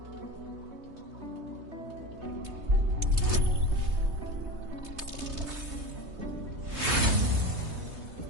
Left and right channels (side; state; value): left; late; 3.2 ms